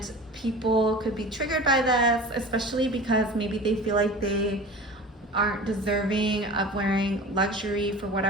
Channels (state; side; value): normal; both; correlation 0.37